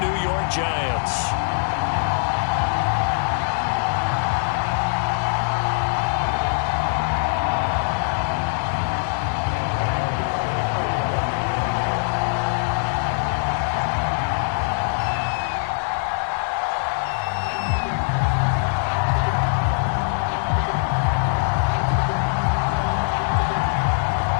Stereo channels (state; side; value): silent; right; 64 dB below the other